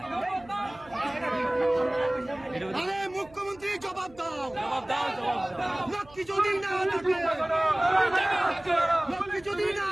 আরে মুখ্যমন্ত্রী জবাব দাও, জবাব দাও জবাব দাও লক্ষ্মী যদি না থাকে, লক্ষ্মী যদি না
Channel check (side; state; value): right; noise; hum, 24 dB below the sound